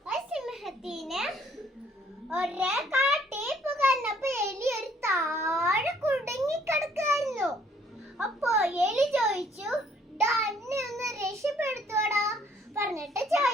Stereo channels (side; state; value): both; normal; correlation 0.63